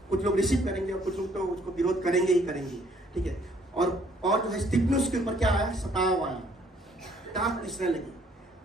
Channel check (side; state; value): both; normal; correlation 0.63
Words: कुछ लोग रिसीव करेंगे और कुछ लोग तो उसको विरोध करेंगे ही करेंगे, ठीक है। और जो है स्तिफनुस के ऊपर क्या आया? सताव आया, दांत पिसने लगी।